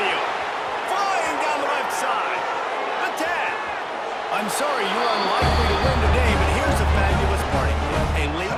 Flying down the left side. The 10. I'm sorry, you're unlikely to win today, but here's a fabulous party. A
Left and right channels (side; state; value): both; identical; correlation 1.00